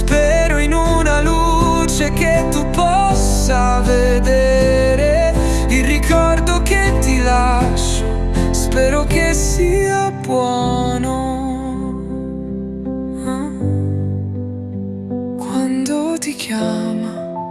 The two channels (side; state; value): both; identical; correlation 1.00